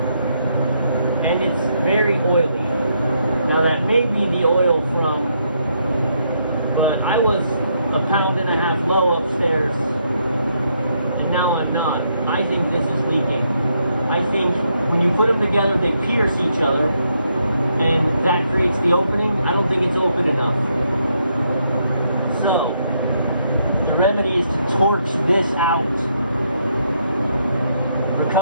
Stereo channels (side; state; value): both; inverted; correlation -0.76